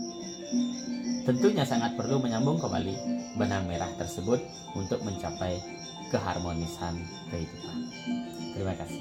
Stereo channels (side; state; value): both; identical; correlation 1.00